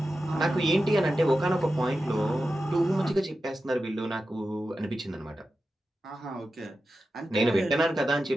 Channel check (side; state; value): both; normal; correlation 0.92